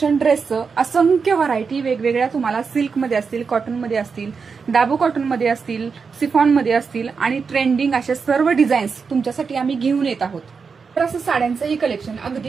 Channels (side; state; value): left; quieter; 5.4 dB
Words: ड्रेसचं असंख्य व्हरायटी वेगवेगळ्या तुम्हाला सिल्क मध्ये असतील, कॉटन मध्ये असतील, दाबू कॉटन मध्ये असतील, सिफॉन मध्ये असतील आणि ट्रेंडिंग असे सर्व डिझाईन्स तुमच्यासाठी आम्ही घेऊन येत आहोत. तर असं साड्यांचंही कलेक्शन